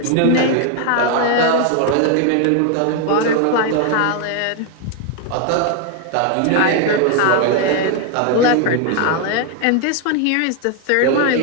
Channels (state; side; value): different; both; correlation 0.01